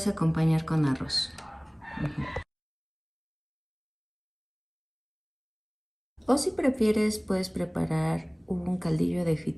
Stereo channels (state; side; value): identical; both; correlation 1.00